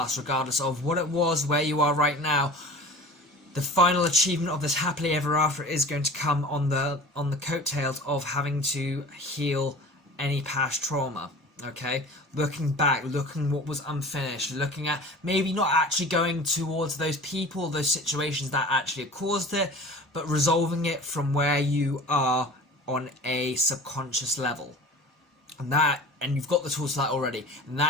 regardless of what it was, where you are right now. The final achievement of this happily ever after is going to come on the coattails of having to heal any past trauma. Okay, looking back, looking what was unfinished, looking at maybe not actually going towards those people, those situations that actually caused it, but resolving it from where you are on a subconscious level. And you've got the tools for that already, and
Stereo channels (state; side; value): normal; both; correlation 0.39